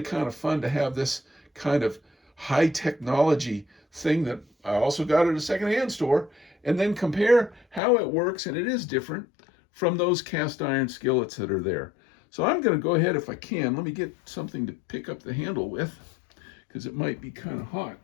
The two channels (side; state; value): right; drops out; at 7.8 s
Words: of fun to have this kind of high technology thing that I also got at a secondhand store, and then compare how it works, and it is different from those cast iron skillets that are there. So I'm going to go ahead, if I can, let me get something to pick up the handle with, because it might be kind of hot.